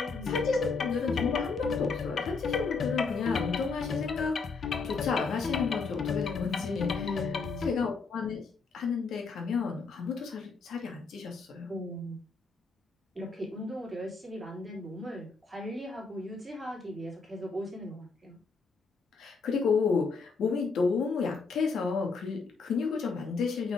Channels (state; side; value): quieter; right; 4.6 dB